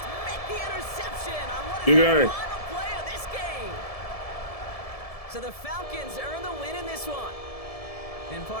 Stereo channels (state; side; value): late; right; 1.7 ms